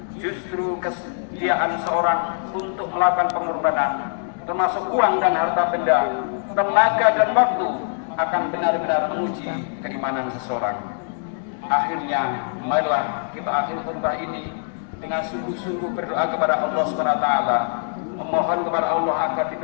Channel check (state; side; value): silent; right; digital silence